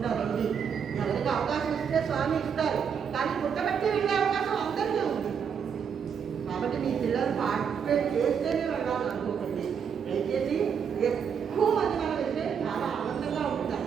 రండి. ఎవరికి అవకాశం ఇస్తే స్వామి ఇస్తారు, కానీ పుట్టబట్టి వెళ్ళే అవకాశం అందరికీ ఉంది. కాబట్టి మీ పిల్లలు పార్టిసిపేట్ చేస్తేనే వెళ్ళాలని అనుకోకండి. దయచేసి ఎక్కువ మంది మనం వెళ్తే చాలా ఆనందంగా ఉంటుంది.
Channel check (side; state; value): left; quieter; 7.2 dB